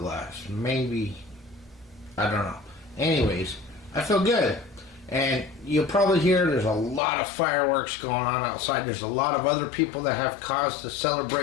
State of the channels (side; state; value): right; drops out; at 7.0 s